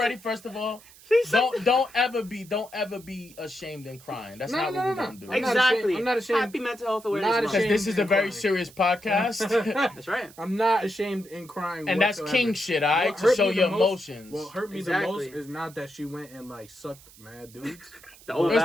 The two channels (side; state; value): right; noise; hiss, 23 dB below the sound